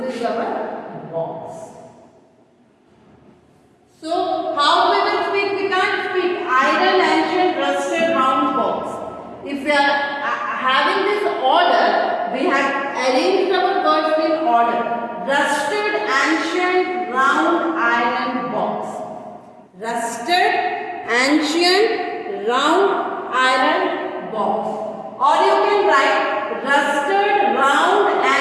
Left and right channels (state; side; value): identical; both; correlation 1.00